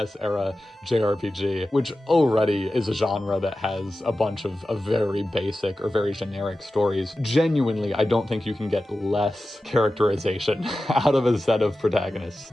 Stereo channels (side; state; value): both; normal; correlation 0.94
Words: era JRPG, which already is a genre that has a bunch of very basic or very generic stories. Genuinely, I don't think you can get less characterization out of a set of protagonists.